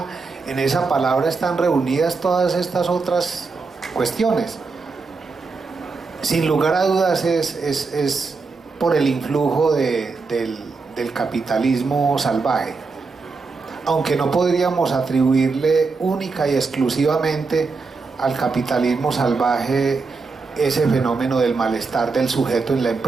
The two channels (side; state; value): left; quieter; 4.4 dB